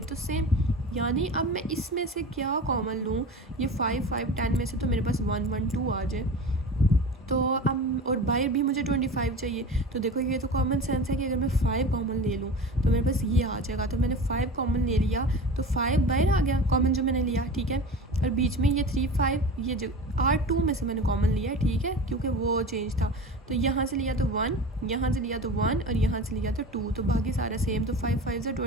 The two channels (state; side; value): normal; both; correlation 0.33